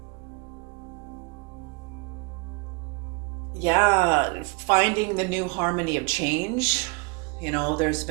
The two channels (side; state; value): left; quieter; 31.4 dB